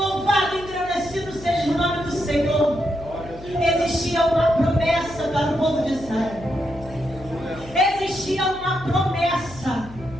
e engrandecido seja o nome do Senhor. Existia uma promessa para o povo de Israel. Existia uma promessa.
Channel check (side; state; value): left; noise; hum, 17 dB below the sound